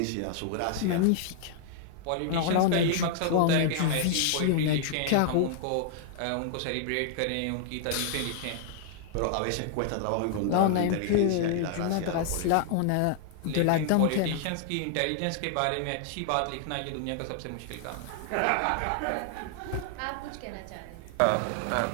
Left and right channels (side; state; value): both; different; correlation -0.01